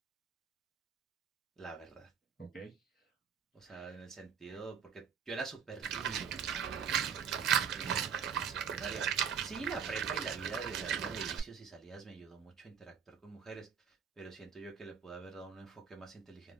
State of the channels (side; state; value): left; quieter; 7.2 dB